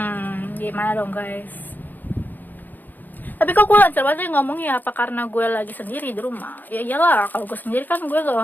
Gimana dong guys. Tapi kok gue lancar banget ngomongnya, apa karena gue lagi sendiri di rumah? Ya iyalah, kalau gue sendiri kan gue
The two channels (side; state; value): right; late; 0.086 ms